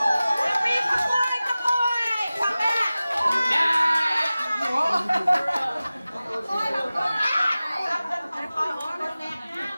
phi khắp ôi khoảng đây là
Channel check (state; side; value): inverted; both; correlation -0.96